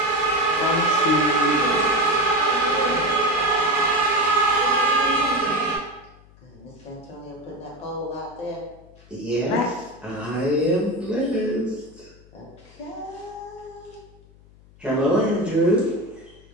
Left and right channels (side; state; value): left; noise; hum, 25 dB below the sound